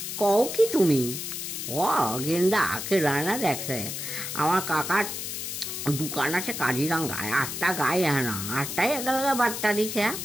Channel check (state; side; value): noise; left; hiss, 5 dB below the sound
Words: কও কি তুমি? ও গেন্দা আকে রানা দেখছে, আমার কাকার দোকান আছে কাজিরাঙ্গায়, 8টা গায়ে না, 8টাই একেলগে বার্তা দিছে,